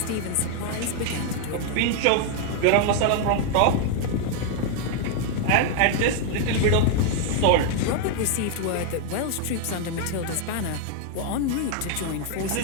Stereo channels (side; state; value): both; different; correlation 0.00